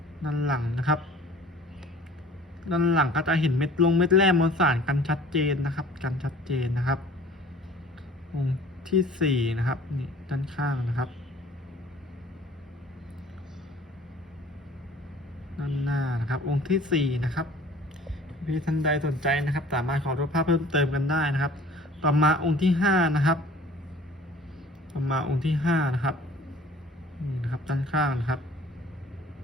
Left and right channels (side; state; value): both; normal; correlation 0.49